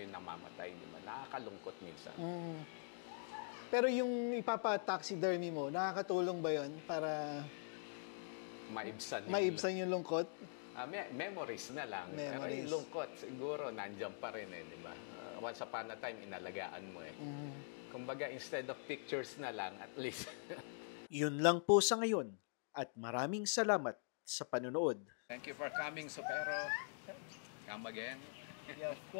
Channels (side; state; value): right; silent; digital silence